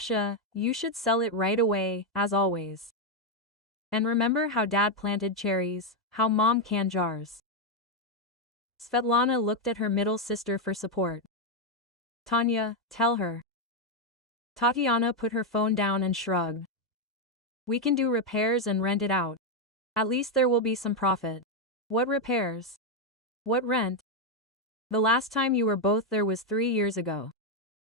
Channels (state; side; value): normal; both; correlation 0.03